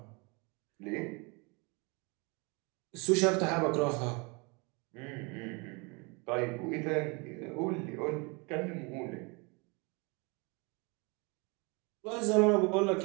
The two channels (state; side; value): quieter; left; 29.6 dB